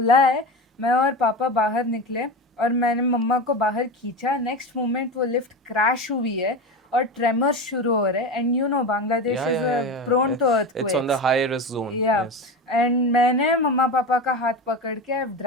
है, मैं और पापा बाहर निकले और मैंने मम्मा को बाहर खींचा। नेक्स्ट मोमेंट वो लिफ्ट क्रैश हुई है और ट्रेमर्स शुरू हो रहे हैं, and you know Bangladesh is prone to It's on the high risk zone. Yeah. Yes. And मैंने मम्मा पापा का हाथ पकड़ के I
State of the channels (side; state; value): both; normal; correlation 0.24